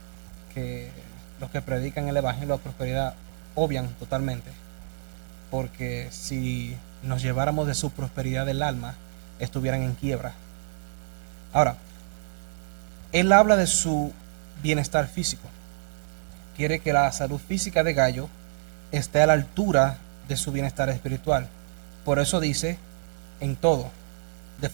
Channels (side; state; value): left; silent; digital silence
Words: que los que predican el Evangelio de prosperidad obvian totalmente. Porque si nos lleváramos de su prosperidad del alma, estuvieran en quiebra. Ahora, él habla de su bienestar físico. Quiere que la salud física de Gallo esté a la altura de su bienestar espiritual. Por eso dice, en todo, de